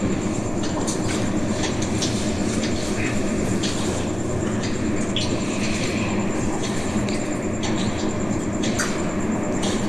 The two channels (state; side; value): noise; left; rumble, 18 dB below the sound